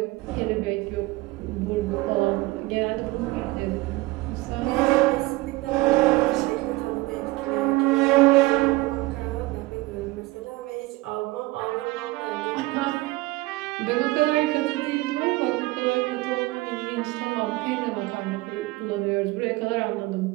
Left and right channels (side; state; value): left; quieter; 20.7 dB